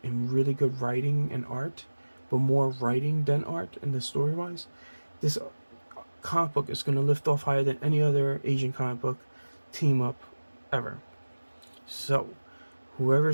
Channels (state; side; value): inverted; both; correlation -1.00